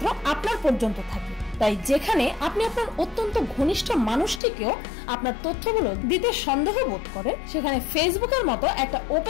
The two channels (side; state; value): right; drops out; at 4.4 s